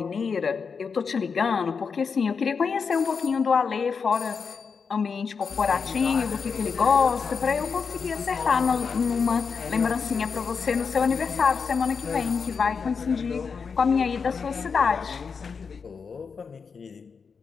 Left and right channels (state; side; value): quieter; right; 5.6 dB